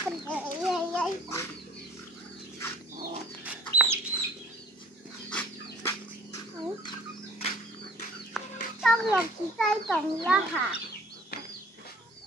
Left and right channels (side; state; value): both; normal; correlation 0.51